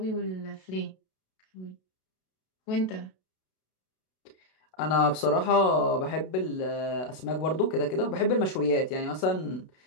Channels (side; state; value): right; late; 32 ms